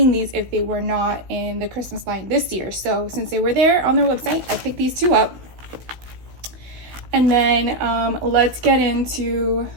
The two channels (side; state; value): left; late; 16 ms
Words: these if they were not in the Christmas line this year. So since they were there on their website, I picked these 2 up. And then let's get into